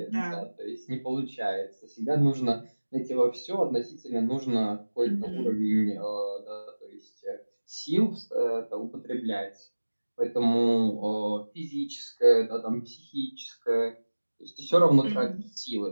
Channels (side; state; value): both; inverted; correlation -1.00